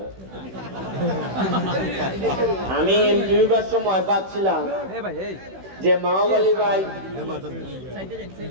আমি এমপি হইবার সময় ভাবছিলাম যে মাওবালি ভাই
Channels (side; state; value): left; late; 16 ms